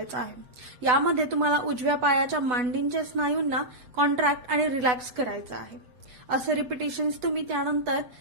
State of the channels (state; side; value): late; left; 8.1 ms